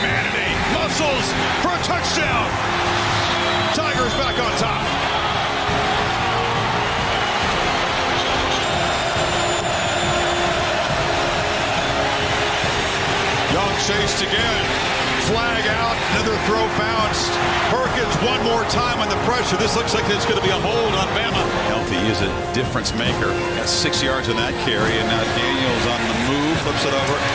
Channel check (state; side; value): identical; both; correlation 1.00